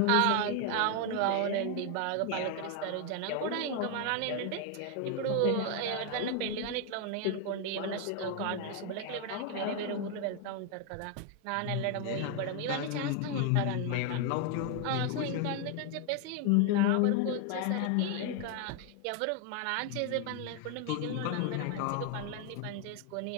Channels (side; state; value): both; different; correlation 0.01